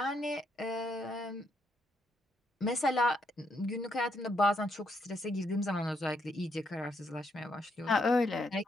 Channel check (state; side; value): normal; both; correlation 0.76